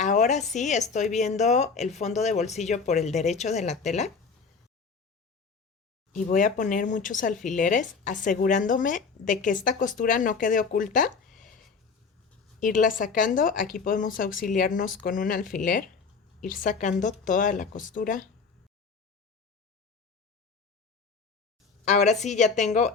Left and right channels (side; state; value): right; quieter; 5.1 dB